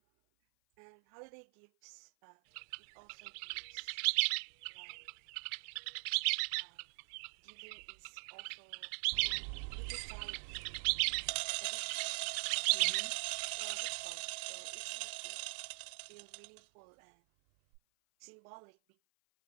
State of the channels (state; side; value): silent; left; 50 dB below the other